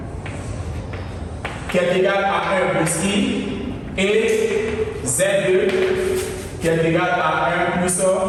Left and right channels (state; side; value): identical; both; correlation 1.00